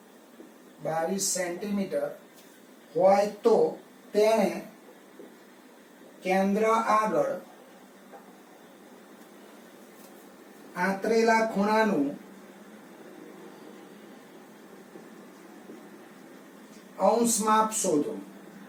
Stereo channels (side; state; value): both; identical; correlation 1.00